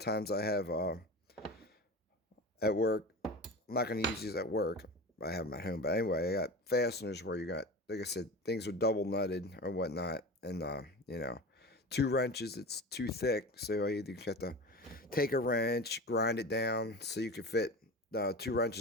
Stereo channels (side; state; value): both; normal; correlation 0.31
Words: times I have at work. I'm not gonna use these at work. I have them at home, but anyway, I got fasteners where you got, like I said, things are double nutted or whatnot, and two wrenches, it's too thick, so you either have to take a wrench, grind it down so you can fit two